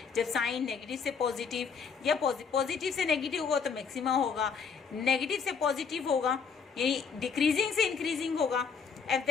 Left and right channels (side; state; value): right; quieter; 5.9 dB